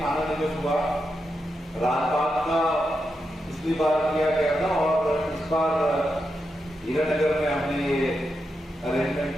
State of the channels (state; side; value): normal; both; correlation 0.86